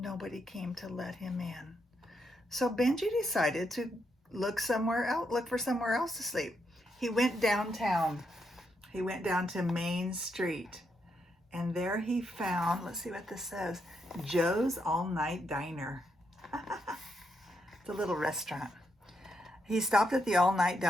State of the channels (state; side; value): normal; both; correlation 0.80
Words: came to let him in. So Benjy decided to look for somewhere else to sleep. He went downtown. He went down to Main Street, and there he found, let's see what this says, Joe's All-Night Diner. It's a little restaurant. He stopped at the All-Night